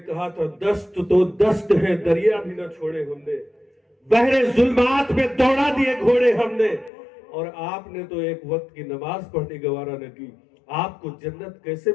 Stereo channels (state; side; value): drops out; right; at 6.9 s